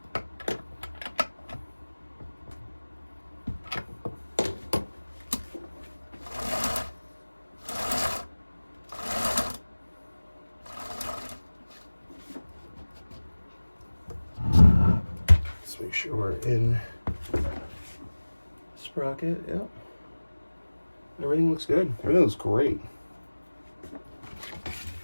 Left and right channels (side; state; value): both; inverted; correlation -1.00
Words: Make sure we're in sprocket. Yep. Everything looks good. Everything looks great.